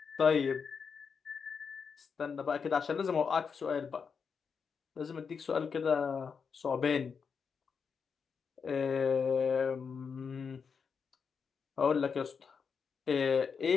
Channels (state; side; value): quieter; right; 6.0 dB